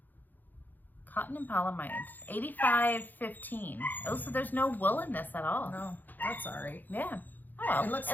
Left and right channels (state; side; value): late; right; 0.086 ms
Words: Cotton and polyamide. 85.15. Oh, so there's no wool in this at all. No, that's all right. Yeah. Oh well.